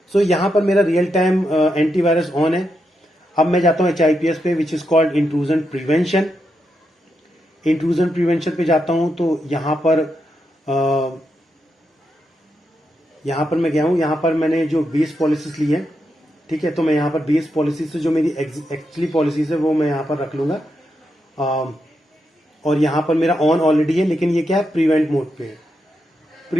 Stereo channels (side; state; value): both; normal; correlation 0.84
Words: सो यहाँ पर मेरा रियल टाइम एंटीवायरस ऑन है। अब मैं जाता हूँ HIPS पे, which is called intrusion prevention. Intrusion prevention पे जाता हूं तो यहां पर मैं गया हूं। यहां पर मैंने जो बेस पॉलिसीज ली है, ठीक है, तो मैं यहां पर बेस पॉलिसीज से जो मेरी एक्चुअली पॉलिसीज है वो मैं यहां पर रख लूंगा। और यहां पर मेरा ऑन ऑलरेडी है, लेकिन ये क्या है, प्रिवेंट मोड पे है।